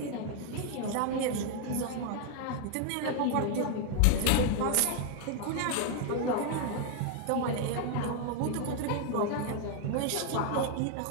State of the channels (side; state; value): both; different; correlation 0.00